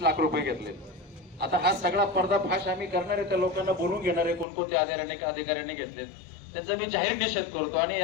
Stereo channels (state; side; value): drops out; right; at 4.5 s